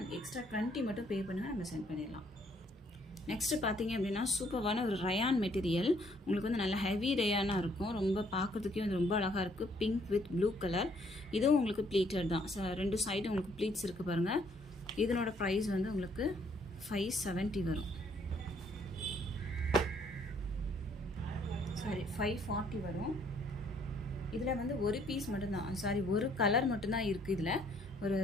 எக்ஸ்ட்ரா 20 மட்டும் பே பண்ணுங்கள், நம்ம சென்ட் பண்ணிடலாம். நெக்ஸ்ட்டு பார்த்தீங்க அப்படின்னா சூப்பரான ஒரு ரயான் மெட்டீரியல். உங்களுக்கு வந்து நல்ல ஹெவி ரயானாக இருக்கும், ரொம்ப பார்க்குறதுக்கே வந்து ரொம்ப அழகாக இருக்குது. Pink with blue colour. இதுவும் உங்களுக்கு ப்ளீட்டட் தான், ரெண்டு சைடும் உங்களுக்கு ப்ளீட்ஸ் இருக்குது பாருங்கள். இதனோட ப்ரைஸ் வந்து உங்களுக்கு 570 வரும், சாரி 540 வரும். இதில் வந்து ஒரு பீஸ் மட்டும்தான், சாரி ஒரு கலர் மட்டும்தான் இருக்குது. இதில் ஒரு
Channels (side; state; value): both; normal; correlation 0.66